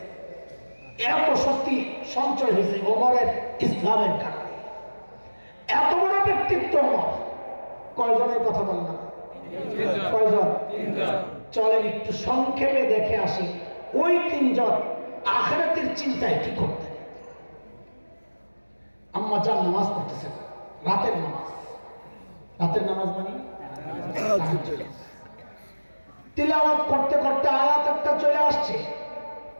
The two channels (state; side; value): inverted; both; correlation -1.00